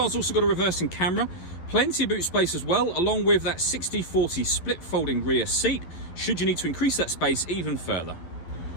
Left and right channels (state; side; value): late; right; 12 ms